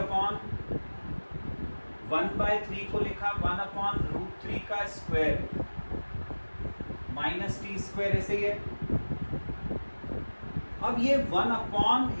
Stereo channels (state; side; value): inverted; both; correlation -1.00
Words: 1/3 को लिखा 1/√3 का स्क्वायर माइनस टी स्क्वायर ऐसे ही है। अब ये